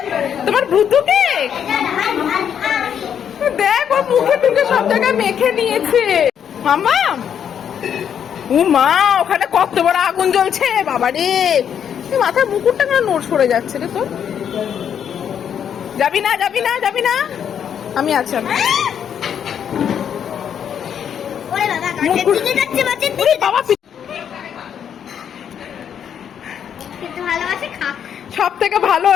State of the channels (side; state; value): right; quieter; 8.5 dB